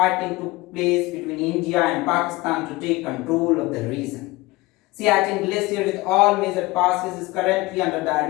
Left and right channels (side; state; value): right; quieter; 20.9 dB